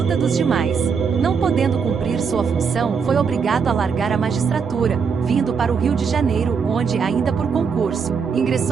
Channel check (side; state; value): left; quieter; 6.0 dB